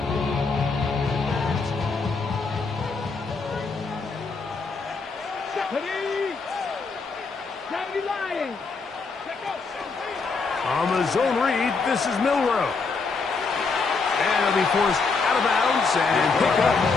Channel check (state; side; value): quieter; right; 4.5 dB